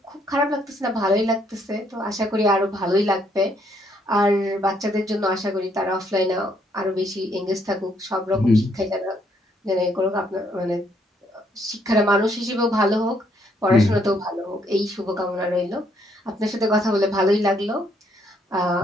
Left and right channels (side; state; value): both; normal; correlation 0.70